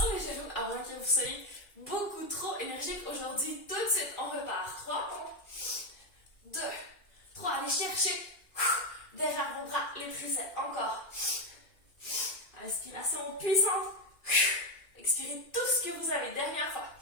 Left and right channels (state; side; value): late; right; 2.4 ms